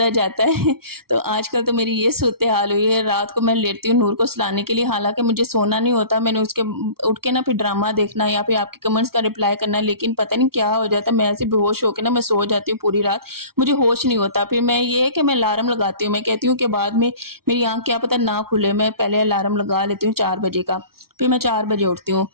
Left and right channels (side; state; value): left; late; 0.94 ms